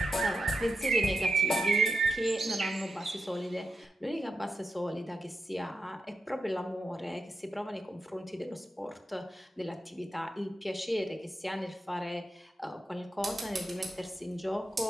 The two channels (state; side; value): normal; both; correlation 0.87